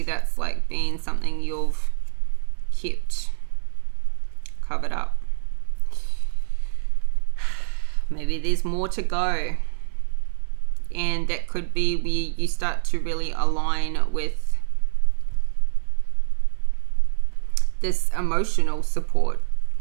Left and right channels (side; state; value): left; silent; 60 dB below the other